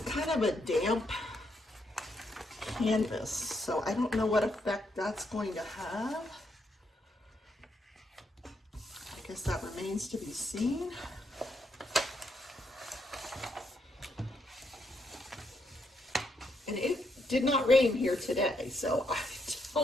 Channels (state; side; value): normal; both; correlation 0.77